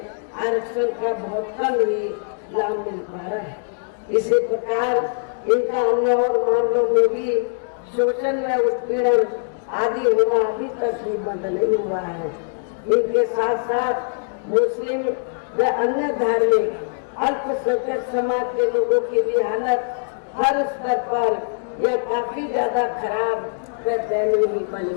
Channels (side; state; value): right; silent; digital silence